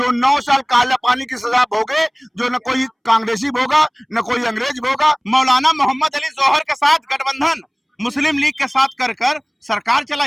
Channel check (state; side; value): identical; both; correlation 1.00